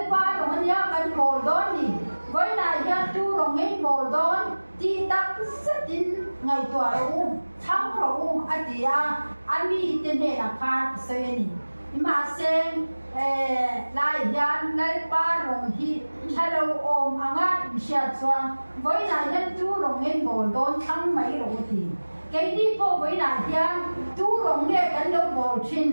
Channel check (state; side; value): inverted; both; correlation -1.00